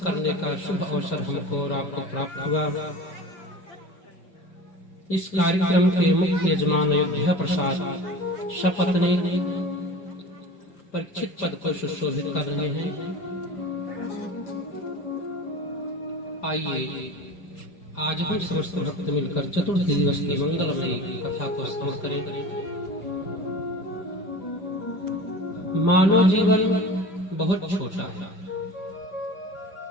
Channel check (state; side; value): late; right; 5.0 ms